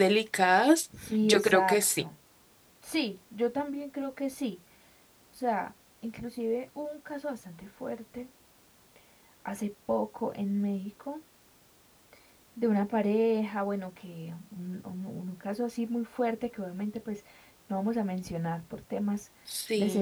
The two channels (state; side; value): identical; both; correlation 1.00